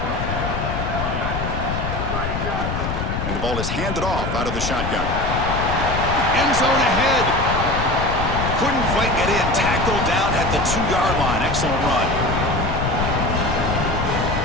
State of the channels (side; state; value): left; noise; rumble, 3 dB below the sound